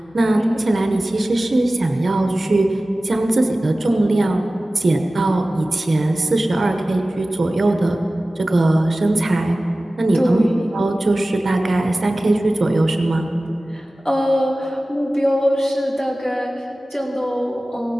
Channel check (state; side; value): normal; both; correlation 0.97